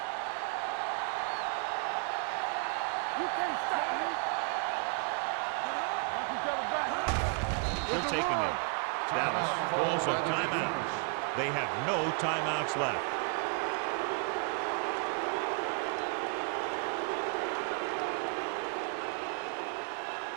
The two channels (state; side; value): quieter; left; 37.2 dB